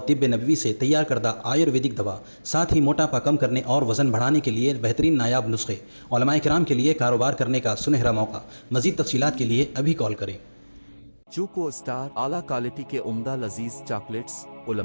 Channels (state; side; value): inverted; both; correlation -1.00